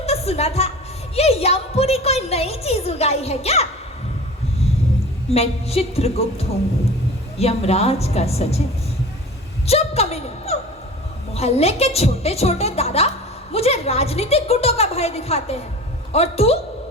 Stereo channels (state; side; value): normal; both; correlation 0.37